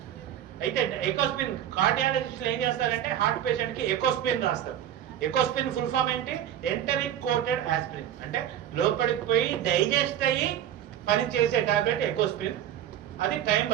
అయితే ఎకోస్ప్రిన్ కార్డియాలజిస్టులు ఏం చేస్తారంటే హార్ట్ పేషెంట్ కి ఎకోస్ప్రిన్ రాస్తారు. ఎకోస్ప్రిన్ ఫుల్ ఫామ్ ఏంటి? Enteric coated aspirin. అంటే లోపలికి పోయి డైజెస్ట్ అయ్యి పని చేసే టాబ్లెట్ ఎకోస్ప్రిన్. అది టైం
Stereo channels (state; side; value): quieter; left; 10.8 dB